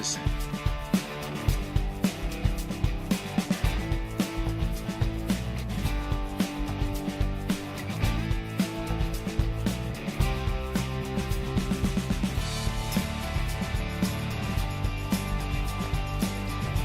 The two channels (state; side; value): identical; both; correlation 1.00